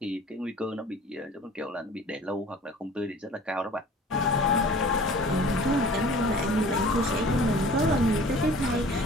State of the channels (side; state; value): both; normal; correlation 0.46